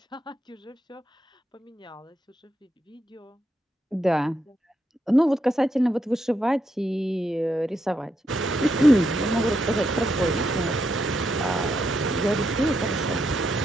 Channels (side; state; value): both; normal; correlation 0.81